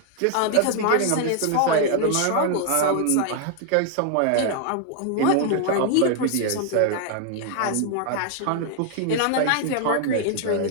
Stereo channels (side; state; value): both; different; correlation 0.00